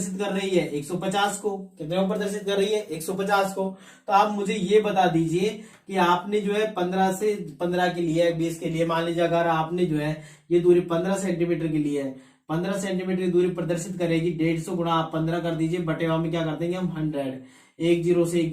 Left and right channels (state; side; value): identical; both; correlation 1.00